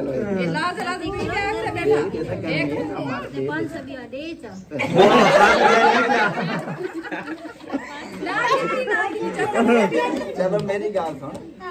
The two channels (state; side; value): identical; both; correlation 1.00